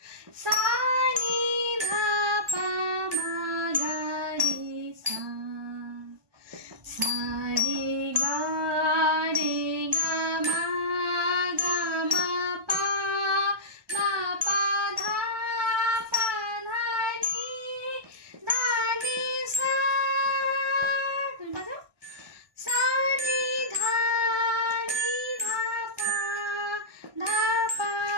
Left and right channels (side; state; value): left; late; 1.2 ms